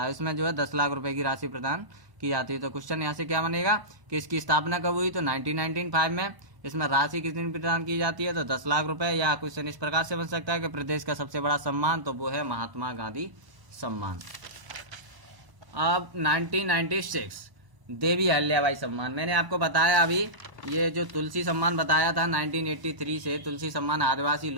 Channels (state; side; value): late; left; 1.0 ms